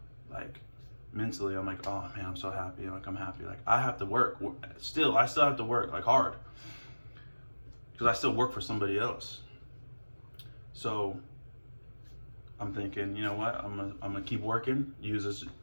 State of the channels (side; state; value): both; inverted; correlation -1.00